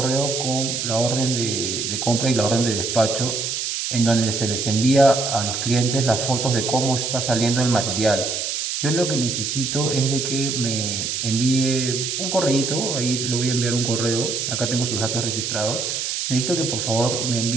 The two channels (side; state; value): right; noise; hiss, 2 dB below the sound